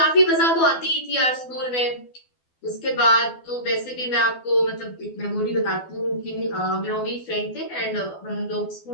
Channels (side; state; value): right; late; 12 ms